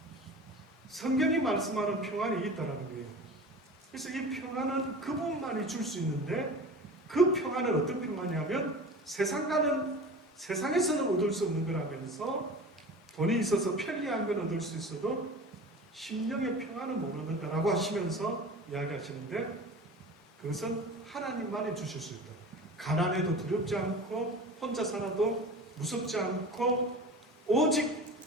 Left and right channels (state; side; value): normal; both; correlation 0.36